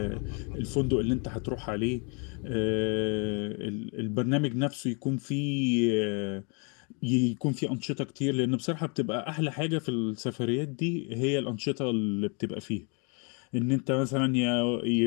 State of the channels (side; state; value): right; quieter; 35.5 dB